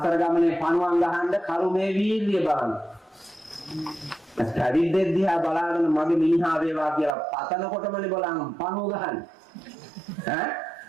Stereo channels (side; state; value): left; drops out; at 7.1 s